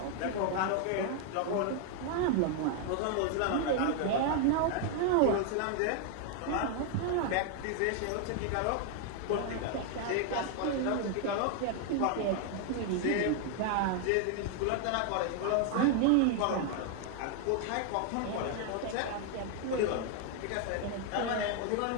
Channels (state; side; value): different; both; correlation 0.00